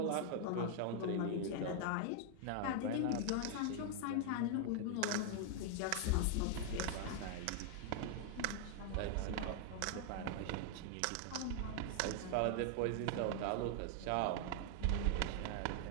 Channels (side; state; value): both; different; correlation 0.00